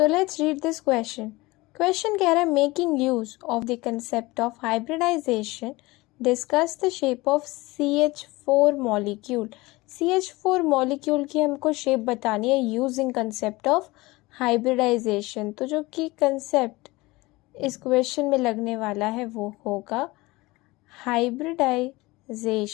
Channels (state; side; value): quieter; right; 21.5 dB